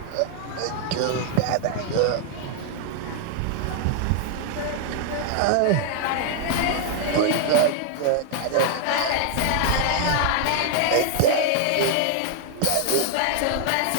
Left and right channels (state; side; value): different; both; correlation 0.00